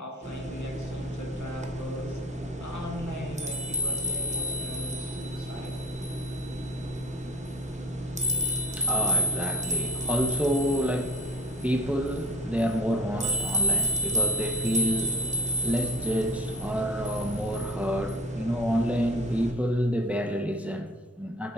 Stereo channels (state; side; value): normal; both; correlation 0.41